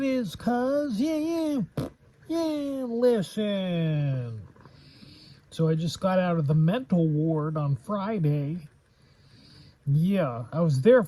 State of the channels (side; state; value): both; identical; correlation 1.00